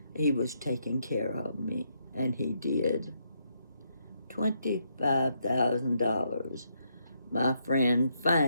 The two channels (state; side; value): inverted; both; correlation -0.77